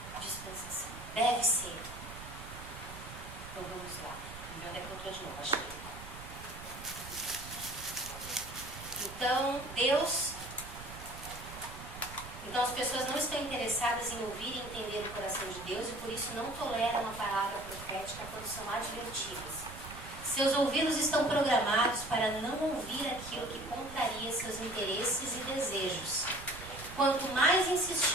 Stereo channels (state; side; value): noise; right; rumble, 13 dB below the sound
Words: dispensação. Deve ser. Então vamos lá. Onde é que eu estou de novo? Achei. Então, Então as pessoas não estão interessadas em ouvir e entender o coração de Deus e por isso não toleram a palavra profética quando são advertidas. Seus ouvidos estão programados para não ouvir aquilo que contraria seus interesses e desejos. Quanto mais